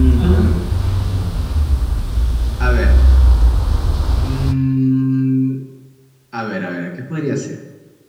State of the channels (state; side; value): identical; both; correlation 1.00